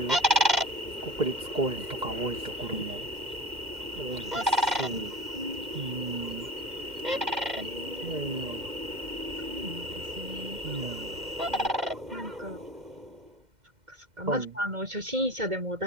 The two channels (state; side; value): late; left; 2.1 ms